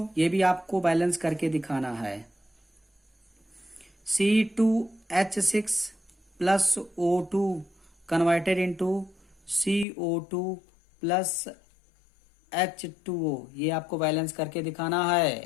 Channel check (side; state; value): right; drops out; at 9.9 s